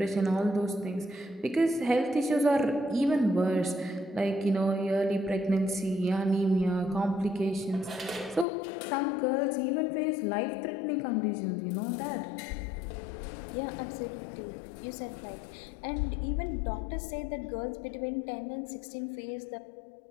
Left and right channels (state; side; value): drops out; right; at 8.5 s